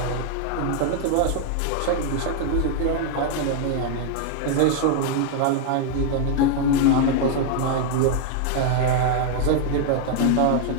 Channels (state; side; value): different; both; correlation 0.00